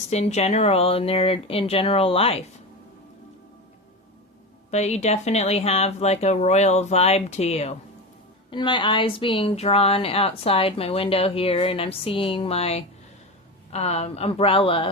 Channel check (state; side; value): normal; both; correlation 0.22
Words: in general, in general life. But you definitely have like a royal vibe to you. And my eyes being drawn outside my window here, and I'm seeing my